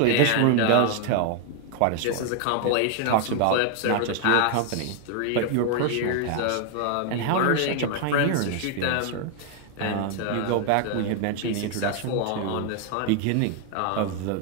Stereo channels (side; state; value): both; different; correlation 0.00